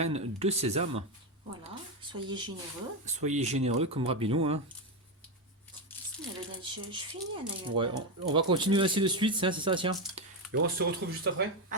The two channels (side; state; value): both; normal; correlation 0.10